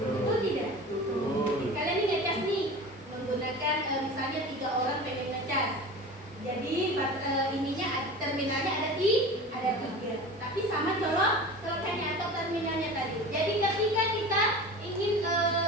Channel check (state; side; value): normal; both; correlation 0.34